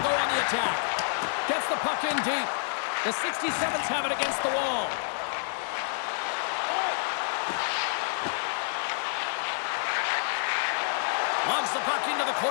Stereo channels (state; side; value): silent; right; digital silence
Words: go on the attack. Gets the puck in deep. The 67s have it against the wall. Launches the puck into the